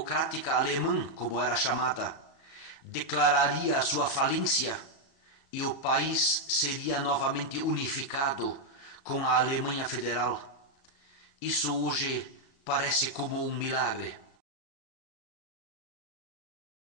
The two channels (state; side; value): late; right; 37 ms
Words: Alemã, como era chamada, declararia a sua falência e o país seria novamente unificado com a Alemanha Federal? Isso hoje parece como um milagre.